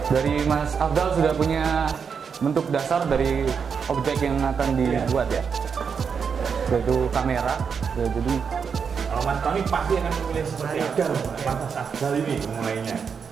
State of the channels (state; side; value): quieter; left; 6.3 dB